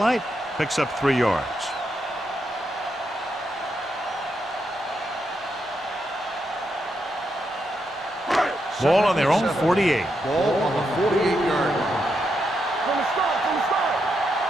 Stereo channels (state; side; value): normal; both; correlation 0.82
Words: picks up 3 yards. Ball on their own 48. Ball on the 48-yard line. From the start, from the start.